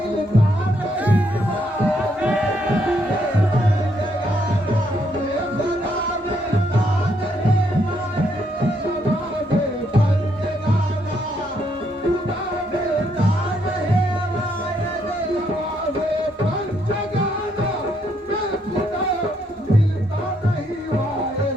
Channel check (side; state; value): both; normal; correlation 0.73